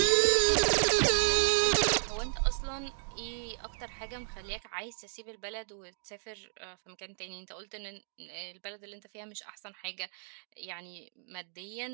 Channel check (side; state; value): left; silent; 56 dB below the other